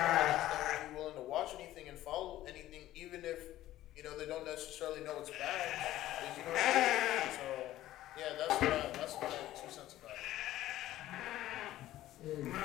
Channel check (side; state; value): right; quieter; 14.5 dB